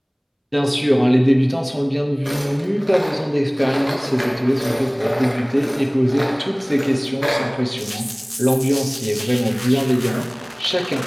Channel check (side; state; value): both; identical; correlation 1.00